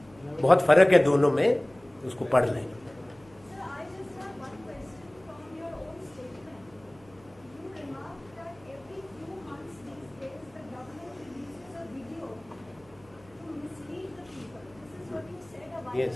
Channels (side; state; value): right; noise; hum, 27 dB below the sound